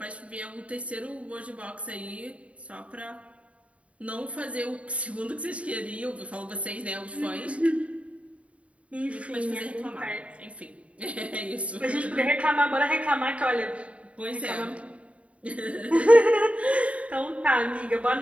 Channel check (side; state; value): left; late; 0.064 ms